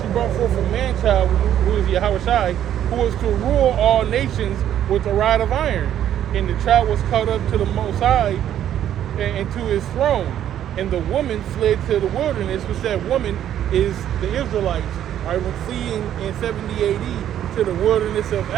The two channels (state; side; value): quieter; left; 10.8 dB